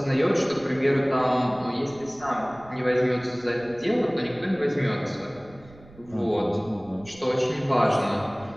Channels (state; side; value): noise; right; rumble, 23 dB below the sound